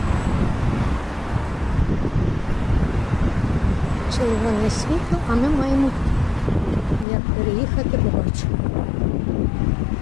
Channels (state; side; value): drops out; right; at 7.1 s